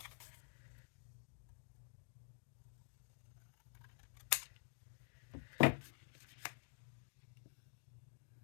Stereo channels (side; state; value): right; silent; digital silence